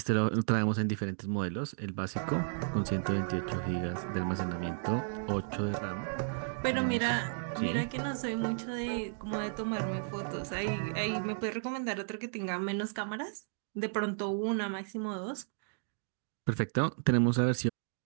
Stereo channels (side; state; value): left; silent; digital silence